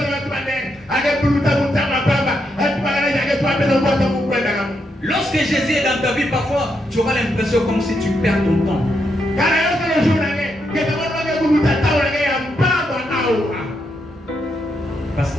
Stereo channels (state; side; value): normal; both; correlation 0.80